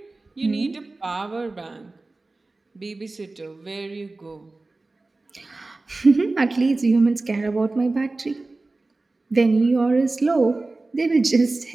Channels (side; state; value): left; quieter; 3.2 dB